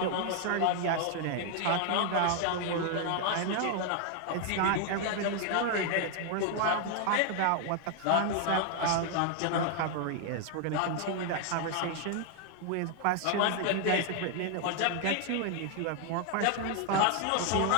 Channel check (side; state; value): both; different; correlation 0.00